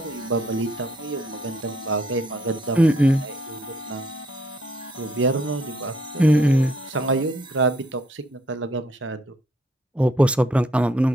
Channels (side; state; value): both; normal; correlation 0.69